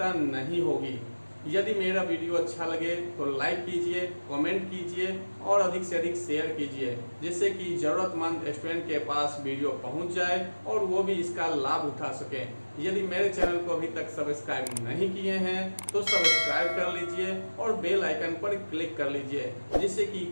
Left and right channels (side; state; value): both; inverted; correlation -1.00